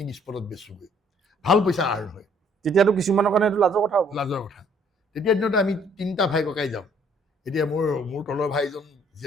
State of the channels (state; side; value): normal; both; correlation 0.61